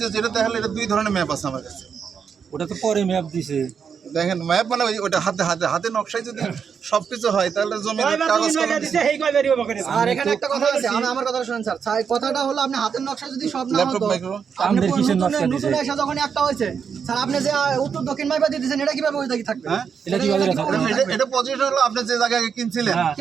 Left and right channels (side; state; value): left; quieter; 6.7 dB